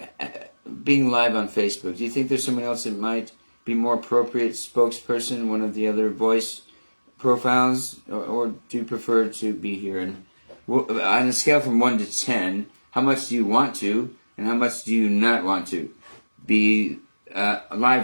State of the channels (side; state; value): both; inverted; correlation -1.00